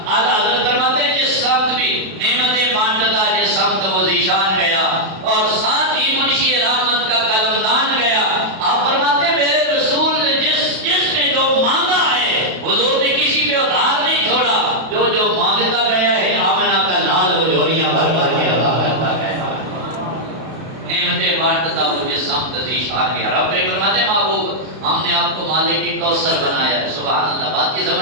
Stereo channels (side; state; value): left; late; 31 ms